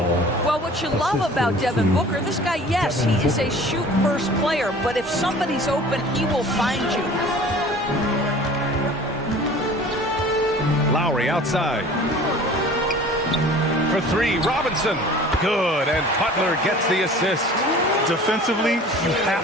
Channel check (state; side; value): normal; both; correlation 0.45